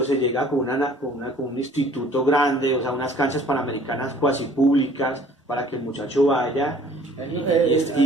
se llega con un instituto grande, o sea, unas canchas panamericanas cuasi públicas para que el muchacho vaya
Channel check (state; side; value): normal; both; correlation 0.54